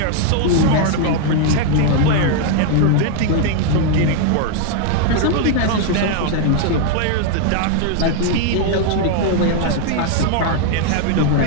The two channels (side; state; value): both; different; correlation 0.00